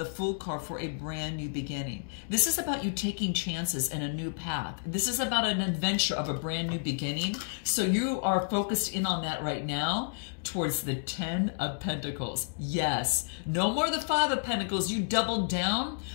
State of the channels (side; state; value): right; silent; digital silence